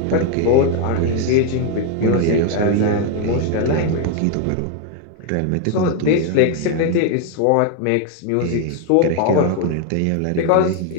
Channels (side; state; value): both; different; correlation 0.01